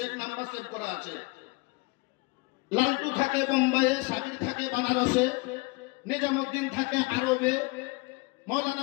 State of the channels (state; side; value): quieter; right; 25.6 dB